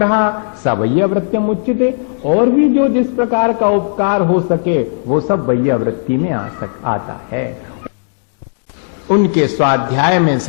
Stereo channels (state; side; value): silent; right; digital silence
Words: सवैयावृत्तिम उच्यते, और भी जो जिस प्रकार का उपकार हो सके वो सब वैयावृत्ति में आता है। उनके स्वाध्याय में